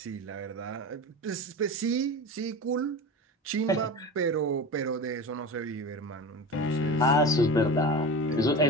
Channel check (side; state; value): both; normal; correlation 0.29